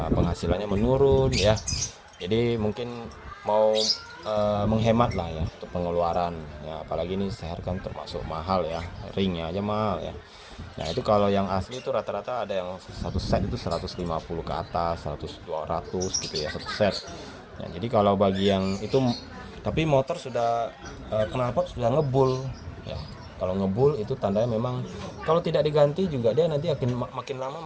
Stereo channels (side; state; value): both; identical; correlation 1.00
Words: menurun ya. Jadi mungkin mau menghemat lah ya untuk pengeluaran ya, apalagi ini seher kan termasuk mahal ya, ringnya aja mahal ya. Nah itu kalau yang asli itu rata-rata ada yang satu set itu 150 ke atas, 100 200 gitu ya satu set. Nah, jadi kalau bagi yang itu, tapi motor sudah knalpot sudah ngebul ya. Kalau ngebul itu tandanya memang kalau tidak diganti juga dia nanti akan makin